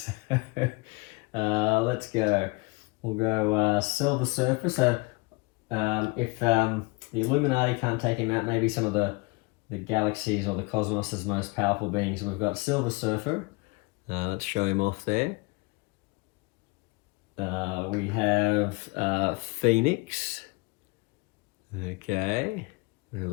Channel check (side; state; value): right; quieter; 26.3 dB